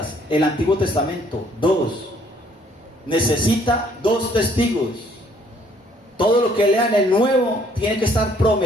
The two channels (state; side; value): normal; both; correlation 0.63